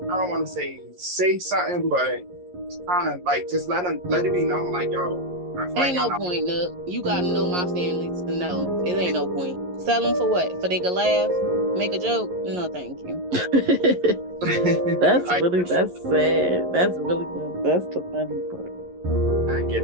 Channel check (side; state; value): left; late; 11 ms